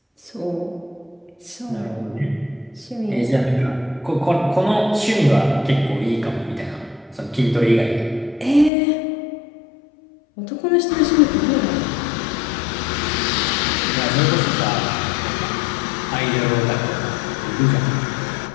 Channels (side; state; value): right; drops out; at 8.7 s